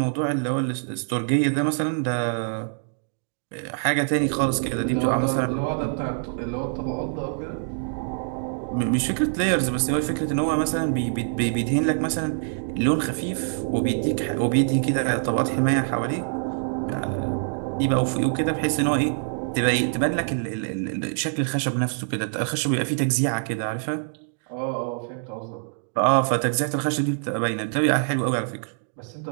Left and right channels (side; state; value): left; silent; digital silence